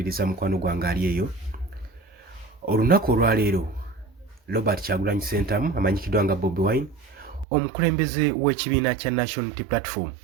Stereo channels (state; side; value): drops out; left; at 7.5 s